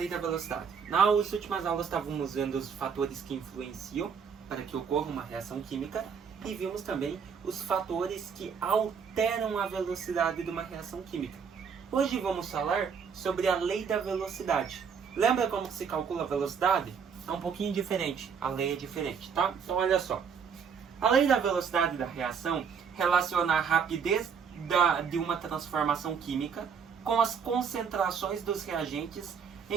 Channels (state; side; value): quieter; left; 6.6 dB